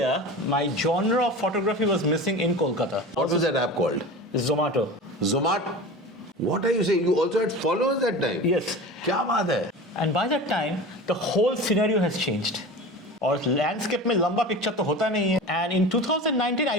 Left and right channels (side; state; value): both; normal; correlation 0.33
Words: my genre of photography was missing in Kolkata. What was that app called? Zomato. Zomato? What are you saying? You also had followers that time? Yes. क्या बात है? And by that time, the whole scenario has changed. और landscape में लंबा picture तो होता नहीं है. And in 2019,